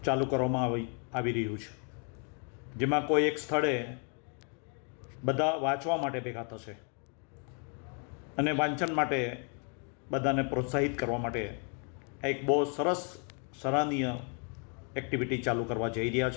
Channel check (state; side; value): quieter; right; 39.5 dB